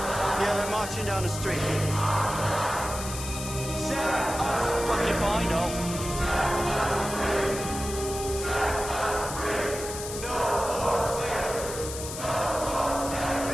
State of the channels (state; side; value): noise; left; hiss, 8 dB below the sound